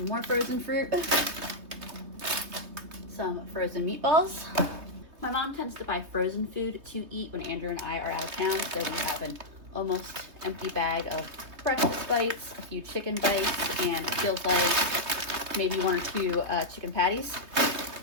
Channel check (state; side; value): late; left; 3.1 ms